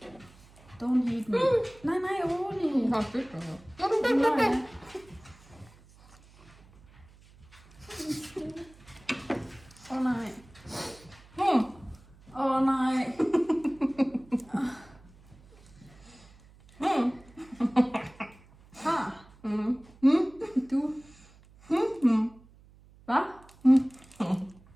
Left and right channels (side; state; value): right; noise; hum, 25 dB below the sound